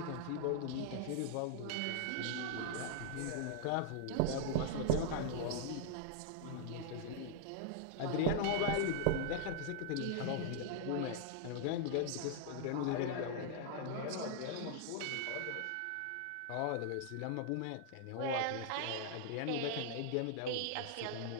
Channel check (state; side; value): different; both; correlation -0.01